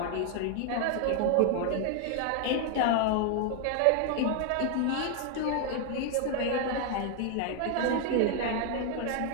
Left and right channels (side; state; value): both; different; correlation 0.00